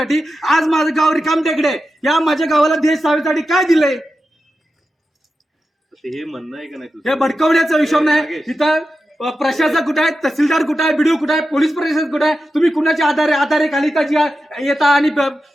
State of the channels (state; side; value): normal; both; correlation 0.91